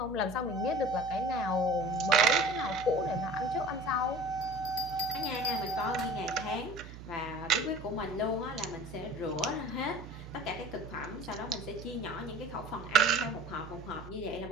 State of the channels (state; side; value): noise; right; hum, 13 dB below the sound